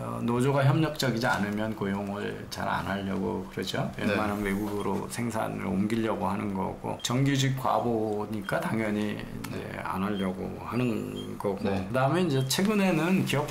노조가 협력적이지 않으면 고용을 잘 안 하려고 그러죠. 웬만하면 외국으로 생산을 옮기려고 하는 거고 정규직 과보니까 당연히 이제 안 하려고 하는 거고 그다음에 이제 최근에는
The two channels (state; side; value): identical; both; correlation 1.00